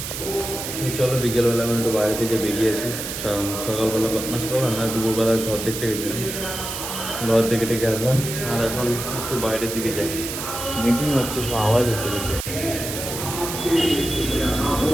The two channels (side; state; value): right; noise; hiss, 6 dB below the sound